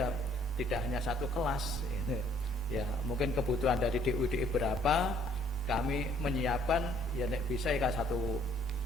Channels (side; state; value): both; normal; correlation 0.62